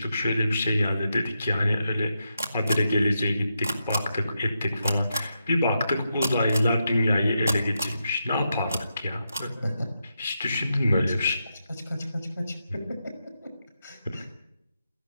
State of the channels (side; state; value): both; inverted; correlation -0.85